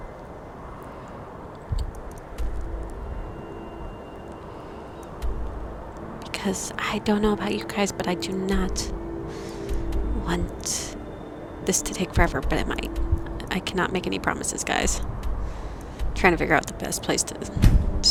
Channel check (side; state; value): both; identical; correlation 1.00